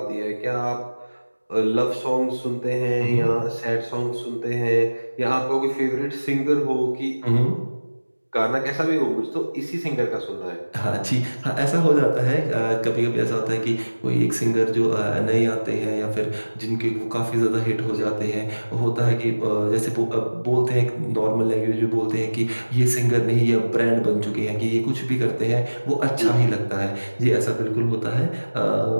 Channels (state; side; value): inverted; both; correlation -1.00